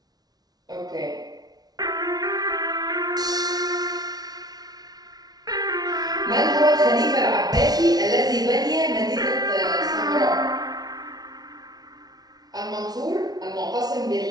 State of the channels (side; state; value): left; late; 0.19 ms